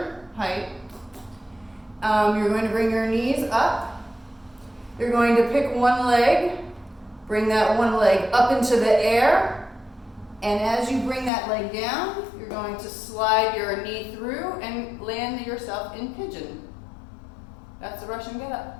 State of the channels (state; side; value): drops out; right; at 11.3 s